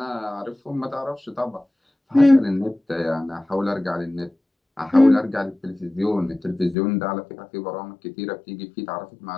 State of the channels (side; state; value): right; drops out; at 6.8 s